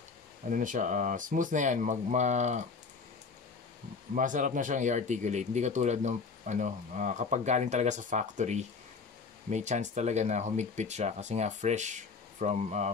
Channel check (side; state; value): right; quieter; 4.8 dB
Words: ano na siya, smooth na yan. Masarap na siyang i-articulate. Hindi katulad nung, kapag galing talaga sa factory, may chance talaga na humigpit siya. Kasi nga, fresh from